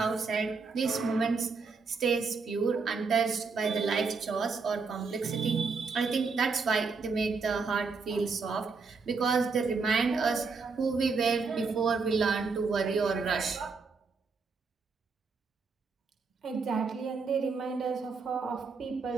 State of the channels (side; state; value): left; quieter; 4.7 dB